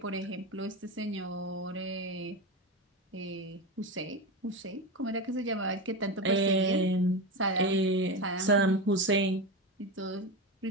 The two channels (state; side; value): normal; both; correlation 0.19